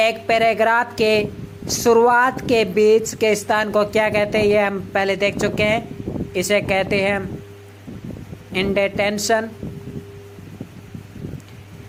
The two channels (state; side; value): identical; both; correlation 1.00